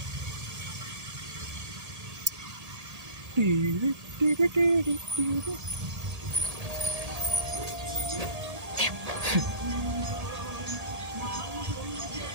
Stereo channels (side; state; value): left; late; 1.8 ms